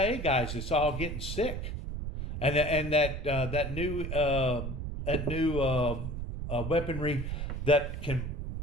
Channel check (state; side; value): noise; right; rumble, 5 dB below the sound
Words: guys that's all getting sick, and that new weaponry that can